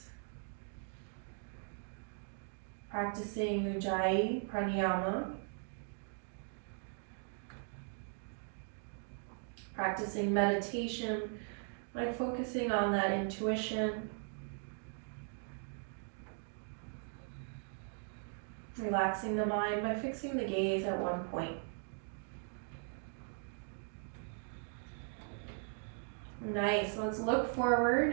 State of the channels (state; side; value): silent; left; 52 dB below the other